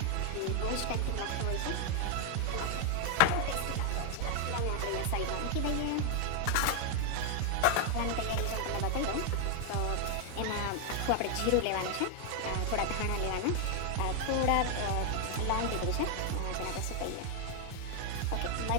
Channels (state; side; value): different; both; correlation 0.00